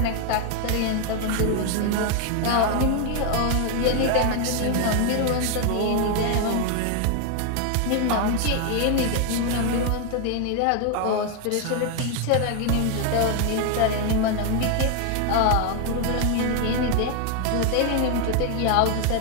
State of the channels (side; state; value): both; different; correlation 0.01